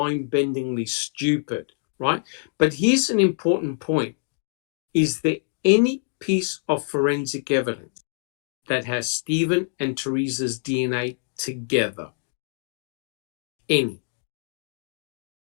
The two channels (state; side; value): silent; right; digital silence